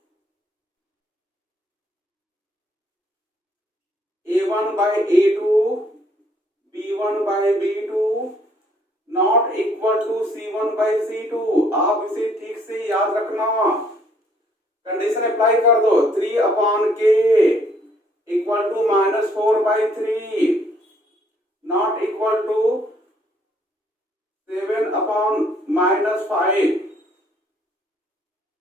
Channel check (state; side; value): normal; both; correlation 0.65